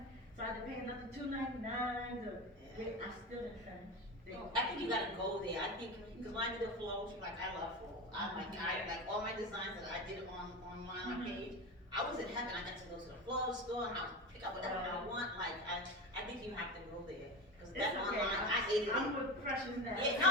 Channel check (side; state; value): both; normal; correlation 0.25